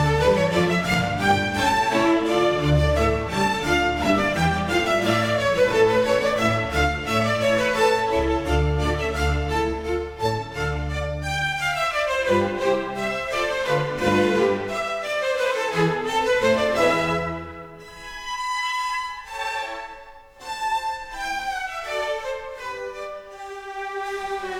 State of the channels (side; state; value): both; identical; correlation 1.00